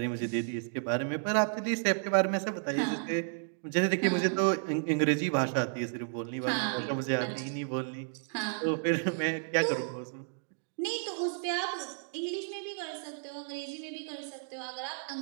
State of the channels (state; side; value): silent; left; digital silence